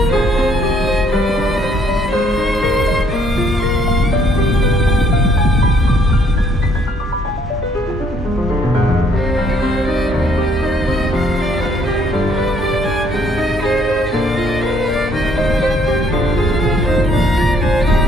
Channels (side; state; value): both; normal; correlation 0.66